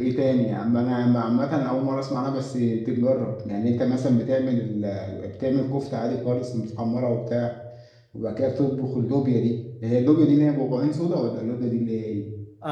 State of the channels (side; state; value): both; identical; correlation 1.00